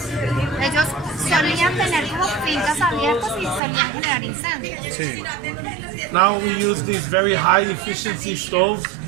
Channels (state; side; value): drops out; left; at 3.6 s